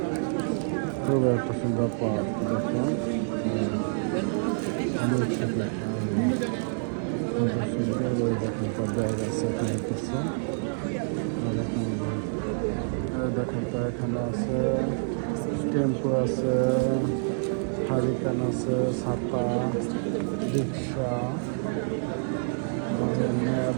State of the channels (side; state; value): left; silent; 55 dB below the other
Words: খুব একটা সুন্দর পাওয়া দেখুন। সুন্দর দেখেন ব্যাগ আছে, দেখেন তো এখানে আছে টেম্পো আছে, হারিকেন আছে, ছাতা, রিক্সা,